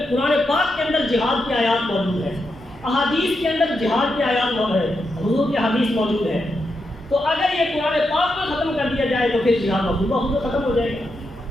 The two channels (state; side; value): normal; both; correlation 0.85